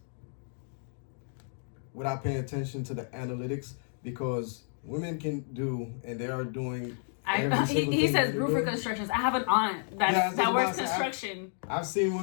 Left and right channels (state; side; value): silent; right; 57 dB below the other